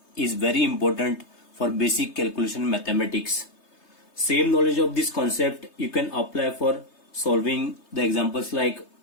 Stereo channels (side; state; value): right; late; 3.3 ms